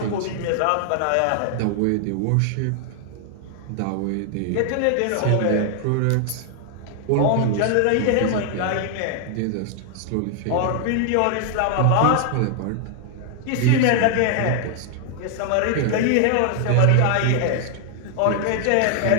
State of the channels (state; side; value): different; both; correlation 0.00